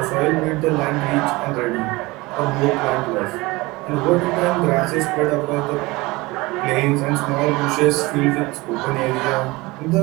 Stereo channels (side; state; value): left; quieter; 22.2 dB